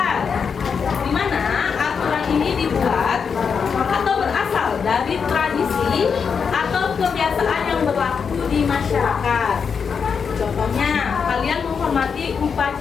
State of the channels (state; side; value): quieter; right; 6.2 dB